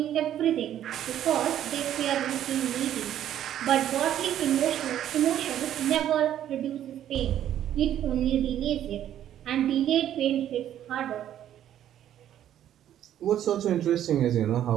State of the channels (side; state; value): left; quieter; 11.1 dB